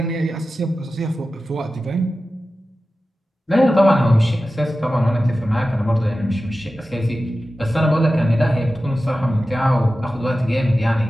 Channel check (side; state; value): both; normal; correlation 0.94